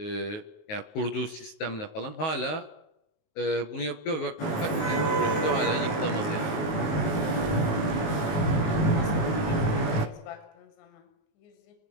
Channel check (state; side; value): late; right; 19 ms